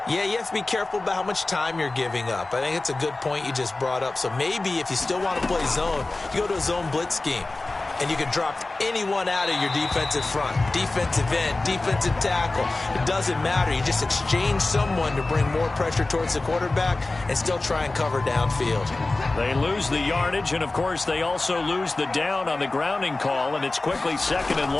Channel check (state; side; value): quieter; right; 3.1 dB